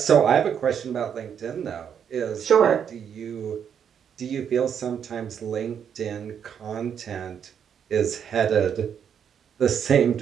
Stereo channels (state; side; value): quieter; left; 8.1 dB